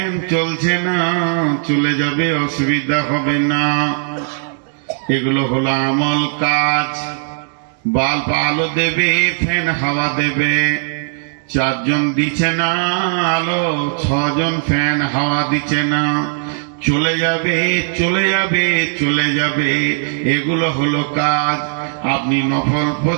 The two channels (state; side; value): silent; left; 68 dB below the other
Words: চলছে না, চলে যাবে, অসুবিধা হবে না। এগুলো হলো আমল, কাজ। বাল্ব আলো দেবে, ফ্যান হাওয়া দেবে। 4 জন দিচ্ছে না আলো, 6 জন ফ্যান হাওয়া দিচ্ছে না, চলে যাবে, চলে যাবে, চলে যাবে। এগুলো হলো কাজ। আপনি নফল